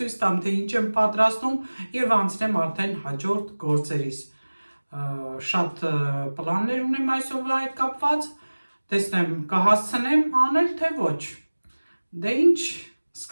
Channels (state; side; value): inverted; both; correlation -1.00